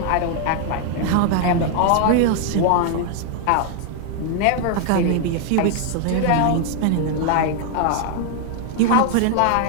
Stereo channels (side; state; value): both; different; correlation 0.00